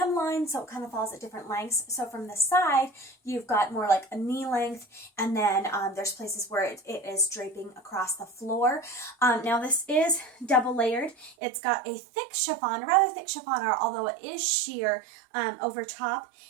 so it kind of falls at different lengths. So from the side, you've got more like a knee length, and then there's places where it is draping across the floor. Now this is double layered. It's got a thick chiffon, rather thick chiffon, although it is sheer over top.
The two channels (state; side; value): drops out; left; at 11.4 s